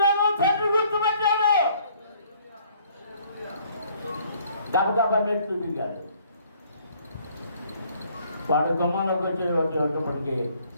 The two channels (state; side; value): inverted; both; correlation -0.61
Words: తండ్రి గుర్తుపెట్టాడు. గబగబా మెట్లు దిగాడు. వాడు గుమ్మంలోకి వచ్చేటప్పటికి